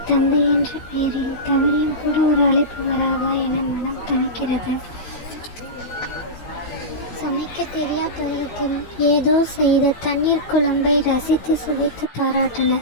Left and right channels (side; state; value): right; late; 16 ms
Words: தந்தை என்ற பெயரில் தவறியும் கூட ஒரு அழைப்பு வராதா என மனம் தவிக்கிறது. சமைக்க தெரியா பருவத்தில் ஏதோ செய்த தண்ணீர் குழம்பை ரசித்து சுவைத்து